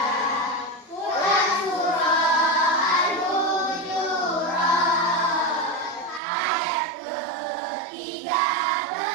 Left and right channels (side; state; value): left; drops out; at 6.2 s